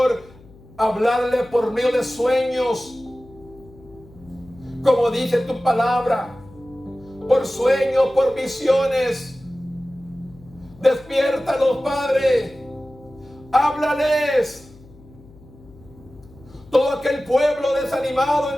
a hablarle por medio de sueños, como dice tu palabra, por sueños, por visiones. Despiértalos, Padre, háblales. Todo aquel pueblo desanimado,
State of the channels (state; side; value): noise; left; hum, 23 dB below the sound